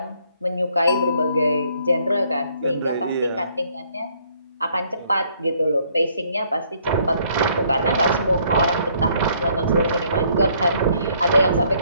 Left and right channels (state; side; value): inverted; both; correlation -0.66